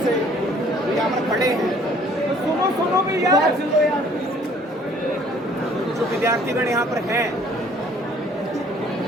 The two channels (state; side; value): normal; both; correlation 0.57